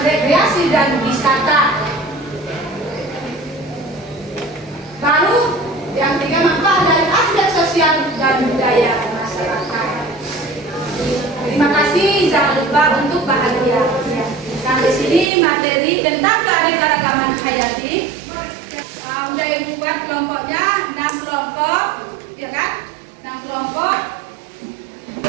rekreasi dan wisata. Lalu yang tiga, manfaat dari aspek sosial dan budaya masyarakat. Terima kasih, jangan lupa untuk bahagia. Sampai sini materi tentang keanekaragaman hayati. Udah ibu buat kelompoknya 6 kelompok, ya kan? 6 kelompok.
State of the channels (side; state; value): left; drops out; at 15.3 s